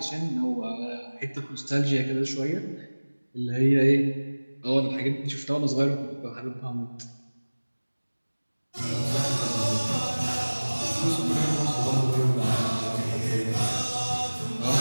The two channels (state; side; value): inverted; both; correlation -1.00